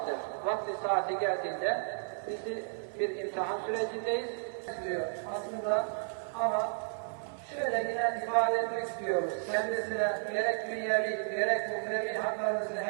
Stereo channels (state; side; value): silent; left; 56 dB below the other